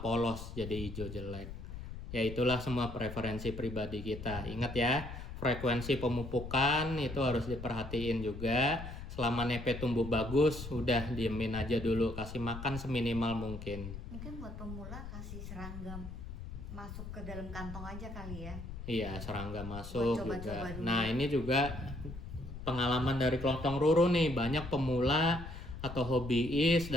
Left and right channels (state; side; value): noise; left; rumble, 10 dB below the sound